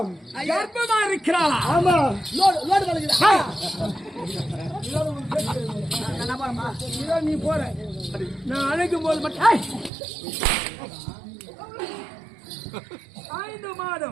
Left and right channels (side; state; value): left; drops out; at 9.9 s